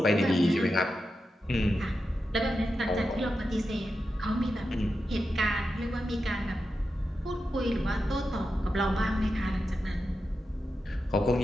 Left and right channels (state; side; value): normal; both; correlation 0.89